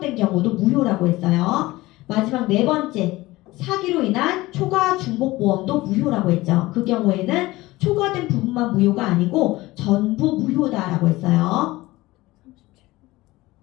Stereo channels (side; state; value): right; quieter; 19.2 dB